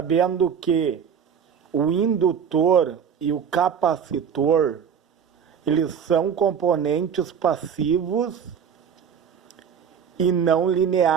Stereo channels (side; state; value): left; quieter; 7.4 dB